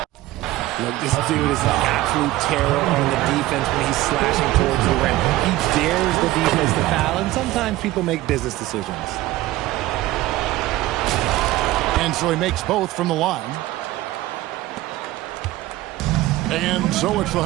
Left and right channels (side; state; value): left; quieter; 16.7 dB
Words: Look, this dude is an absolute terror on the defense when he's slashing towards the rim. He dares the defense to foul, and sometimes people make business decisions. And so he makes both from the line. And so it's the